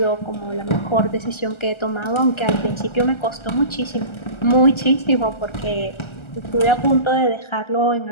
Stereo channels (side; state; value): right; late; 1.3 ms